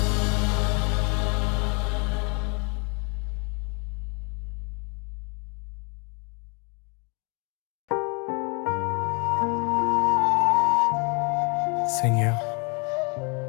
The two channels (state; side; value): quieter; right; 33.3 dB